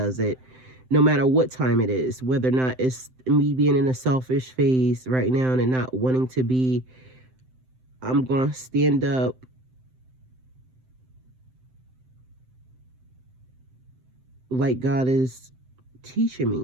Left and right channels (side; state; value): left; late; 7.8 ms